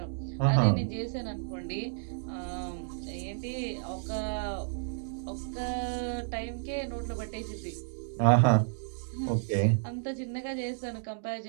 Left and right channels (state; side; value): silent; left; digital silence